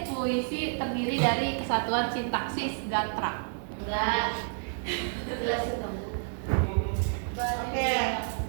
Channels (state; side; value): silent; left; digital silence